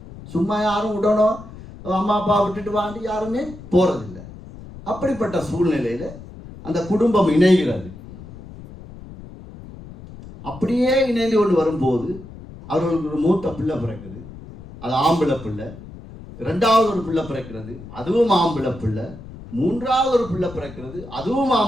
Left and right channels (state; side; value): noise; left; rumble, 16 dB below the sound